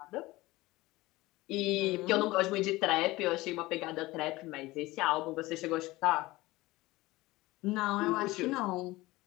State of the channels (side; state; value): right; quieter; 19.7 dB